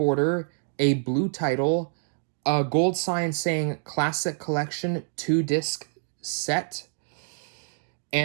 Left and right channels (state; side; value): silent; left; 59 dB below the other